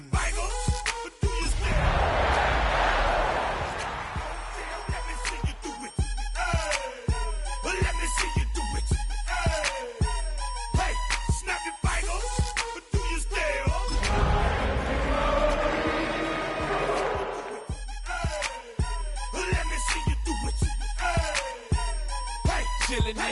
fingers, but do you still? Let me see you do it. Let me see you do it. Hey, snap your fingers, but do you still? Let me see you do it. Hey, chillin'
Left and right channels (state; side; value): identical; both; correlation 1.00